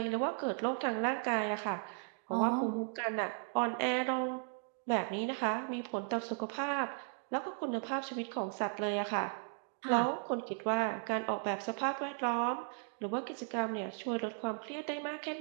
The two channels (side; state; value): left; silent; 54 dB below the other